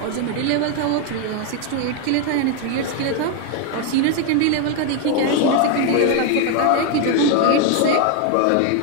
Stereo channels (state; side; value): different; both; correlation 0.01